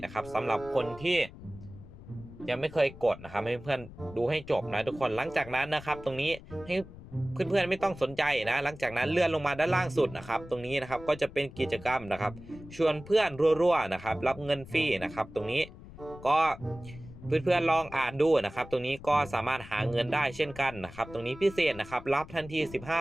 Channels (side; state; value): left; noise; rumble, 17 dB below the sound